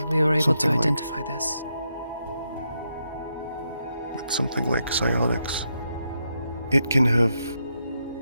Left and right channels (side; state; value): both; inverted; correlation -0.82